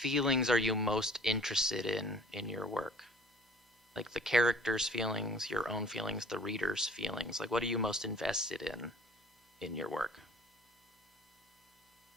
are you most interested in your work? Like the character's feelings, your own feelings, the reader's feelings. Like what are you most invested in your work?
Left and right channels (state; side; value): normal; both; correlation 0.51